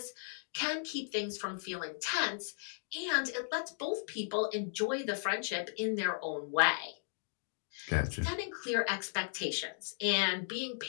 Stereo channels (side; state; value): right; silent; digital silence